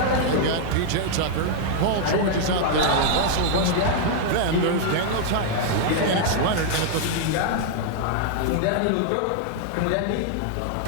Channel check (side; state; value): both; different; correlation -0.01